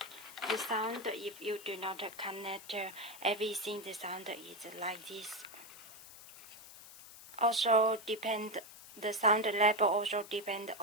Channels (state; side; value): noise; left; hiss, 17 dB below the sound